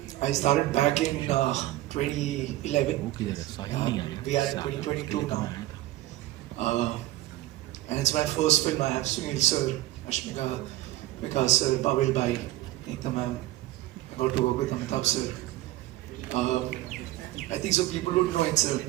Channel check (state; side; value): quieter; left; 16.2 dB